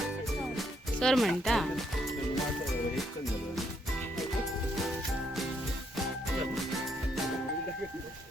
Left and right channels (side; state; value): both; normal; correlation 0.74